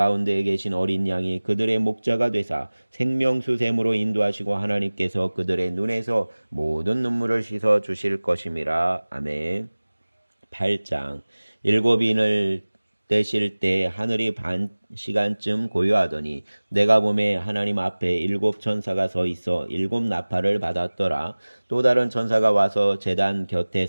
계신 어린 양이 그들의 목자가 되사 생명수샘으로 인도하시고 하나님께서 그들의 눈에서 모든 눈물을 씻어 주실 것임이라. 아멘. 8장. 일곱 인을 떼실 때 하늘이 반 시간쯤 고요하더니 내가 보매 하나님 앞에 일곱 천사가 서 있어 일곱 나팔을 받았더라. 또 다른 천사가 와서 제단 곁에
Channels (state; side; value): inverted; both; correlation -1.00